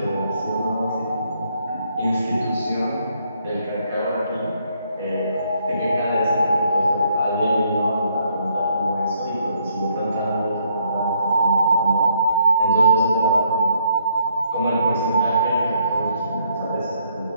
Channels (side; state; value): both; inverted; correlation -0.71